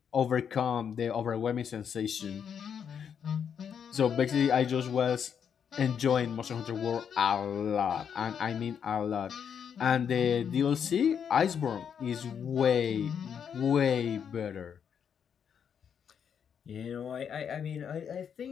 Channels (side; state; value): right; quieter; 7.7 dB